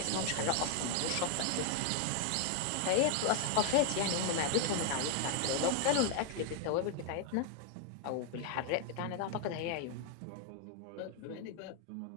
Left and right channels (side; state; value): both; different; correlation 0.00